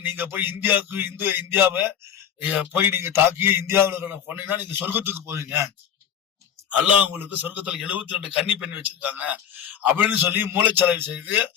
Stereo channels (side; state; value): right; quieter; 9.0 dB